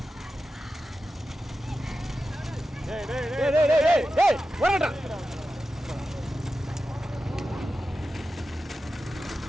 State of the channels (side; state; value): both; normal; correlation 0.92